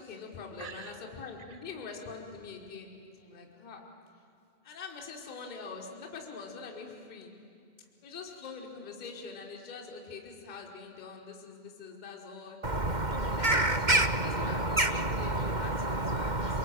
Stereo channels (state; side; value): late; left; 2.1 ms